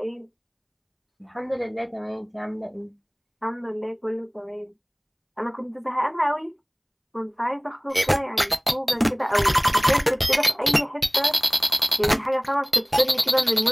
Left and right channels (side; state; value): both; identical; correlation 1.00